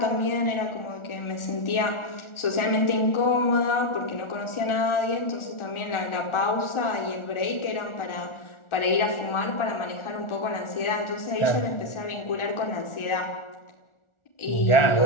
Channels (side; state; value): right; late; 1.4 ms